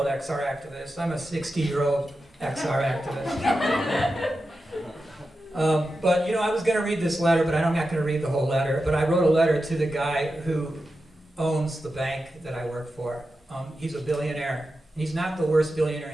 XR activist. I'm a 60-year-old XR activist. But I was going to read this letter, but I'm not going to read the whole letter. But I wrote a letter to the guy who owns the bank that I work for. He's a billionaire. And he's not the worst billionaire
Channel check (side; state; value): both; normal; correlation 0.90